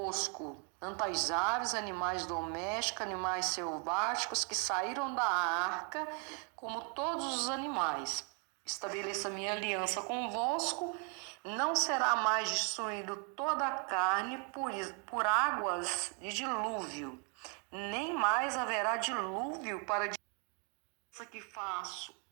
tanto as aves, animais domésticos, animais selváticos que saíram da arca, como todos os animais. Estabeleço a minha aliança convosco. Não será mais destruído toda a carne por águas de dilúvio, nem mais haverá dilúvio para a que faço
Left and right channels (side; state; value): left; quieter; 38.2 dB